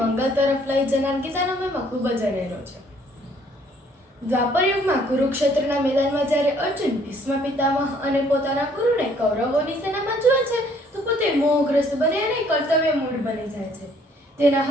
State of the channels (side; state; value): both; normal; correlation 0.62